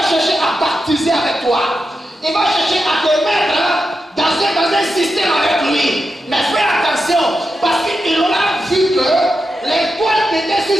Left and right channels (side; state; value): both; normal; correlation 0.88